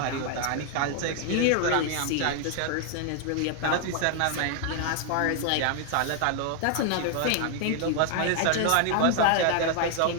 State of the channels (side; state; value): both; different; correlation 0.00